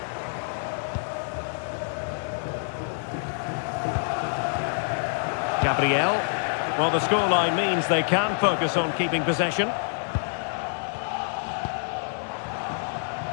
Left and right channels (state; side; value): silent; right; 58 dB below the other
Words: Gabriel. Well, the scoreline means they can focus on keeping possession.